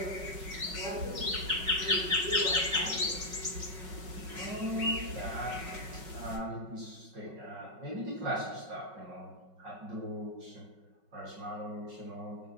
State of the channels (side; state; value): left; late; 5.4 ms